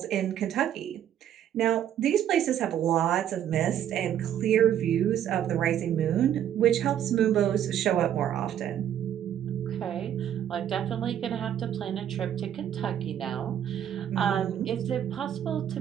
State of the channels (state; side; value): quieter; left; 10.3 dB